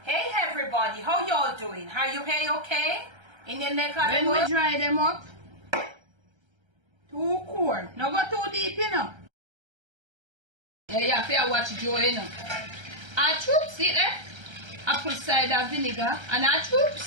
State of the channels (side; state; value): left; late; 1.3 ms